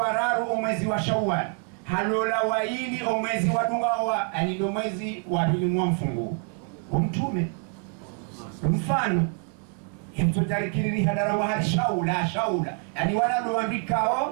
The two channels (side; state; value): left; quieter; 38.4 dB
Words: mwezi wa Shawwal, halola waili mwezi wa Dungawa, ani ndio mwezi wa pili mwa mfungu Mtume. Mfano hemtotarikiri hadara wa hali shaula yani